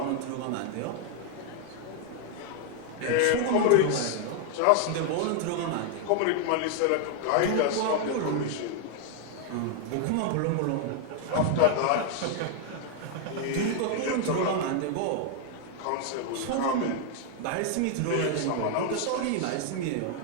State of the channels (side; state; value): both; different; correlation 0.00